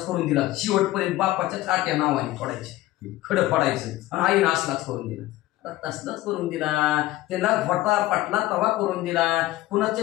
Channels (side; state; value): right; quieter; 16.7 dB